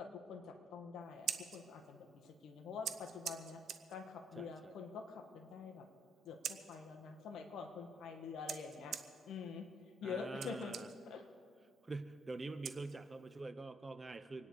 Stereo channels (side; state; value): both; normal; correlation 0.68